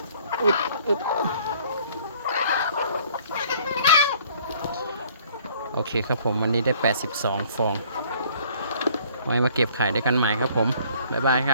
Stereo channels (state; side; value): inverted; both; correlation -0.57